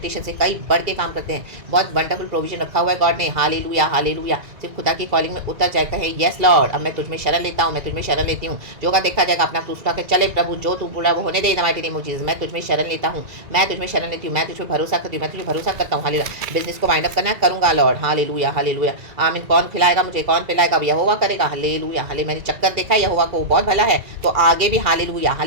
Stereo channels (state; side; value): late; left; 2.3 ms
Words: से कई बढ़ के काम करते हैं। बहुत वंडरफुल प्रोविजन रखा हुआ है गॉड ने, हालेलुया, हालेलुया। सिर्फ खुदा की कॉलिंग में उतर जाए, कहे यस लॉर्ड, अब मैं तुझ में शरण लेता हूँ, मैं तुझ में शरण लेती हूँ, जो का देखा जाएगा, अपना क्रूस उठा के चले, प्रभु जो तू बोला वो होने दे, माइटी नेम ऑफ जीसस, मैं तुझ में शरण लेता हूँ, मैं तुझ में शरण लेती हूँ, मैं तुझ में भरोसा करती हूँ, मैं तुझे भरोसा करता हूँ, हालेलुया। बिजनेस को वाइंड अप करना करूँगा लॉर्ड, हालेलुया, हालेलुया। आमीन। कौन खिलाएगा मुझे, कौन पिलाएगा, यहोवा करेगा, हालेलुया, हाले। मैंने चक्कर देखा यहोवा को, बहुत भला है, तो आगे भी हालेलुया,